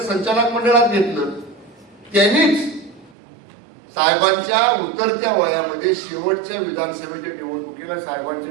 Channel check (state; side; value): drops out; left; at 3.2 s